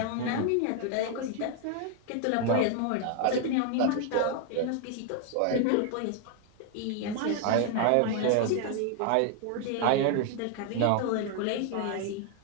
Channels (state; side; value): different; both; correlation 0.00